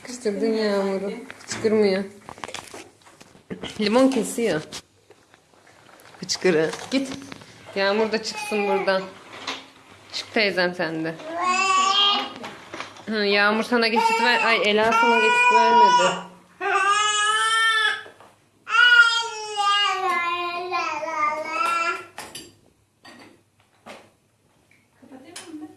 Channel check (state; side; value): identical; both; correlation 1.00